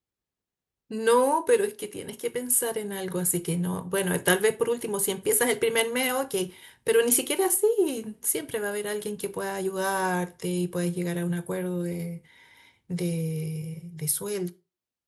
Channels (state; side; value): identical; both; correlation 1.00